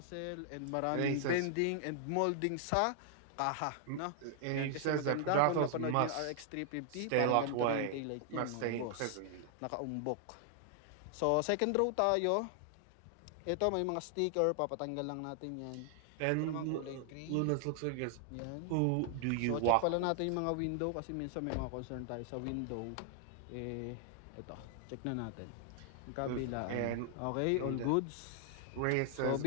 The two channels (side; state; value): both; different; correlation 0.00